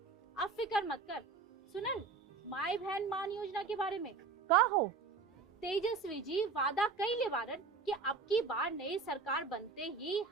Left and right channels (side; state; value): left; quieter; 4.5 dB